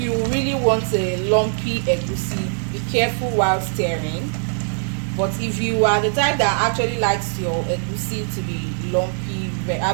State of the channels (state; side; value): silent; left; 60 dB below the other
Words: really want a lumpy egusi, be careful while stirring. But if you are the type that actually likes your egusi to be lumpy,